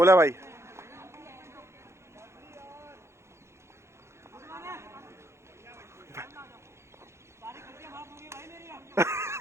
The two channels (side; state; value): left; late; 0.13 ms